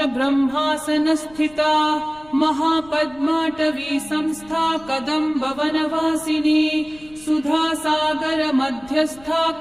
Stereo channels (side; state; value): left; noise; rumble, 25 dB below the sound